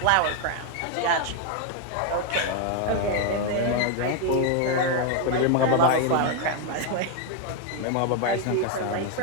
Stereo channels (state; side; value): different; both; correlation 0.01